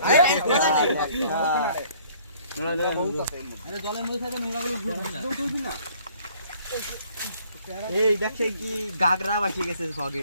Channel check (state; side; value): inverted; both; correlation -0.59